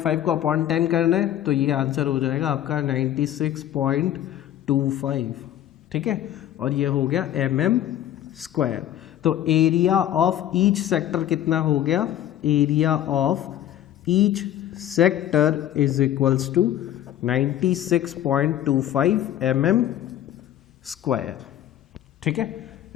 को अपॉन 10 करना है तो ये आंसर हो जाएगा आपका 96.25। ठीक है, और ये हो गया mm²। तो एरिया ऑफ ईच सेक्टर कितना हो गया, area of each sector is equals to 96.25 mm²। ठीक है,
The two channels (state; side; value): quieter; right; 11.9 dB